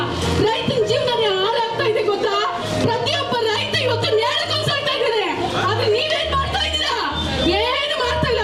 ರೈತನ ಜೀವನ ಹಾಳಾಗ್ತಾ ಇದೆ ಗೊತ್ತಾ? ಪ್ರತಿಯೊಬ್ಬ ರೈತ ಇವತ್ತು ನೇರಕ್ಕೊಂಡ್ಸಾಗ್ತಾ ಇದ್ದಾರೆ. ಆದ್ರೆ ನೀವೇನ್ ಮಾಡ್ತಾ ಇದ್ದೀರಾ? ಏನು ಮಾಡ್ತಾ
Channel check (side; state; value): both; identical; correlation 1.00